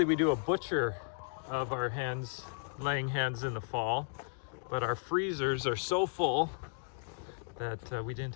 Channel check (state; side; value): silent; right; digital silence